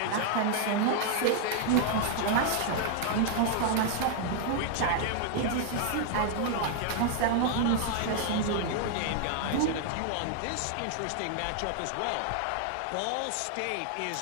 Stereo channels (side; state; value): both; different; correlation 0.00